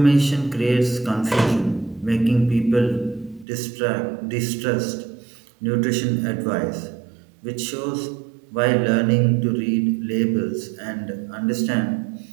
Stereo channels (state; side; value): drops out; left; at 3.5 s